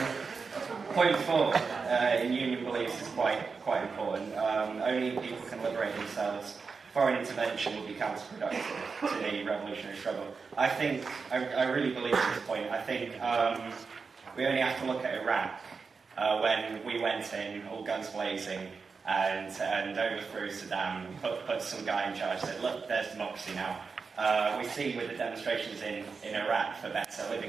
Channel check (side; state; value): left; quieter; 4.9 dB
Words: Point 4 in union beliefs is quite important. Only people can liberate themselves. Foreign intervention will be counterproductive to the revolutionary struggle. I really believe at this point. I think we only have to look at Iraq when we went in, all guns blazing, and overthrew Saddam, put some guy in charge, said, look, there's democracy now. We see with the demonstrations in Iraq for better